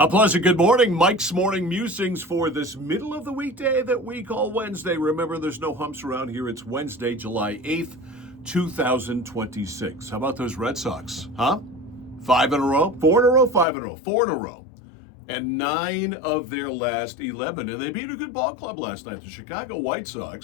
pleasant good morning. Mike's Morning Musings for this middle of the weekday that we call Wednesday. Remember, there's no humps around here. It's Wednesday, July 8th, 2026. How about those Red Sox, huh? 5 in a row? 4 in a row? 5 in a row? 4 in a row. And 9 of their last 11. And they beat a good ball club last night. The Chicago White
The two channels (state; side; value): drops out; right; at 13.7 s